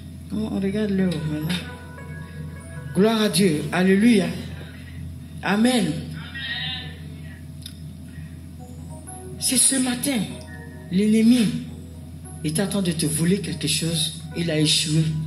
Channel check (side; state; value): both; identical; correlation 1.00